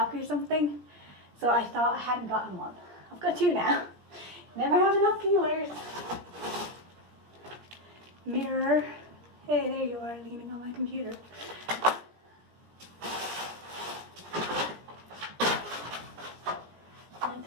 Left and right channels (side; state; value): left; late; 17 ms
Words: or something, so I thought I hadn't gotten one. I've got 2 now. Never have enough peelers. Mirror. Hey, there you are, leaning on my computer. My